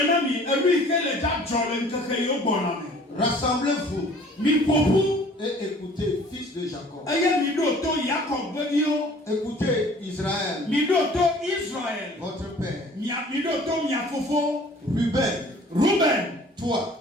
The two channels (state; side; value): normal; both; correlation 0.51